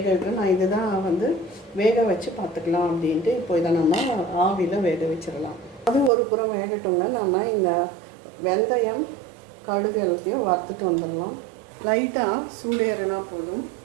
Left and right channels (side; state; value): left; drops out; at 6.1 s